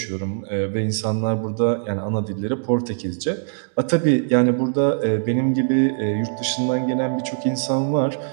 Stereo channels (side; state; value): left; silent; digital silence